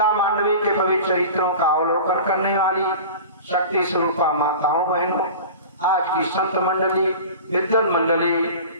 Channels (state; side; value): inverted; both; correlation -0.36